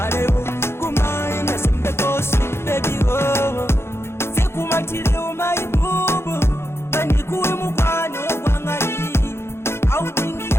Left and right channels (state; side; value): late; right; 0.12 ms